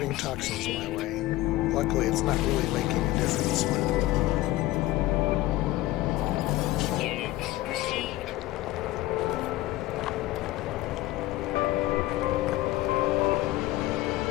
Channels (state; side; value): quieter; right; 16.8 dB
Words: toxins my way. Luckily, it's not really making a difference. Units received.